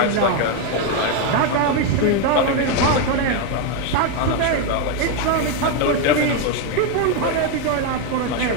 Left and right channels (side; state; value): both; different; correlation 0.02